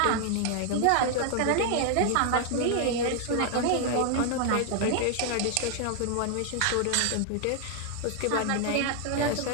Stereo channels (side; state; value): both; different; correlation 0.00